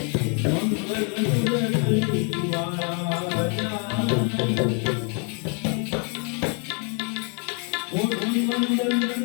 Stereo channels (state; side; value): quieter; right; 38.1 dB